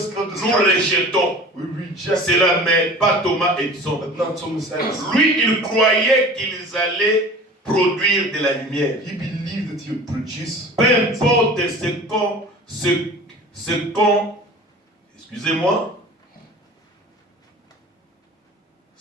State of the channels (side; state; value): both; normal; correlation 0.41